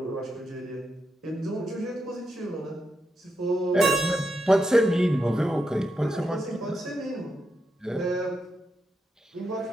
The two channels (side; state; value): both; normal; correlation 0.85